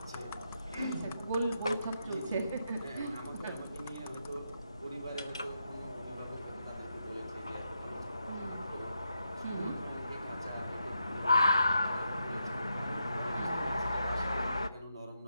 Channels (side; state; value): both; inverted; correlation -0.83